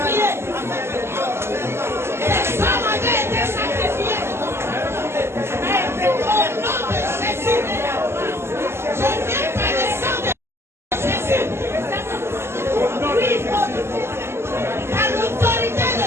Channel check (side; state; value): left; late; 0.12 ms